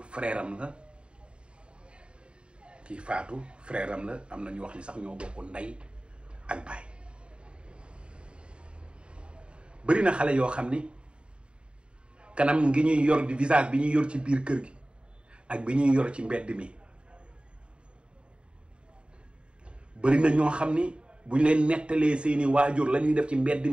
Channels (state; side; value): late; left; 0.054 ms